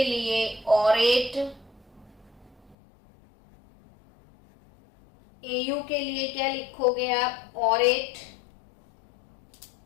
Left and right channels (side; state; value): right; drops out; at 2.8 s